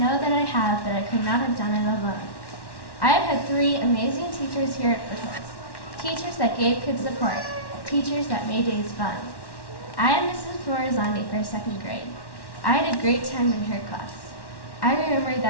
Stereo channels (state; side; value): late; right; 1.1 ms